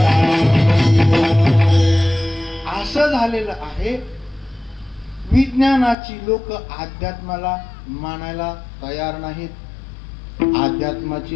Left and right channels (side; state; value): right; drops out; at 6.0 s